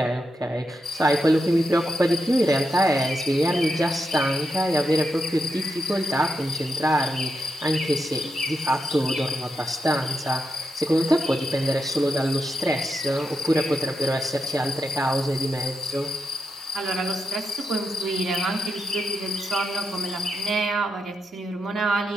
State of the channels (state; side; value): normal; both; correlation 0.85